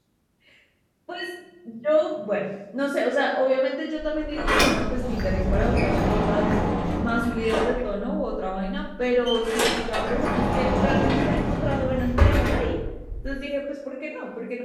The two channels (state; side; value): identical; both; correlation 1.00